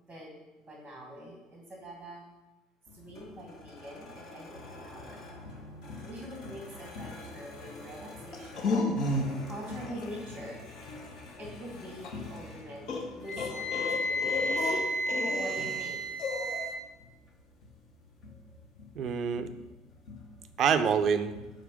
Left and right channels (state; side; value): normal; both; correlation 0.59